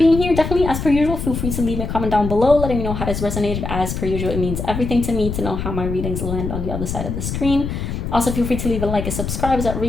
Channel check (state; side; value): noise; left; rumble, 4 dB below the sound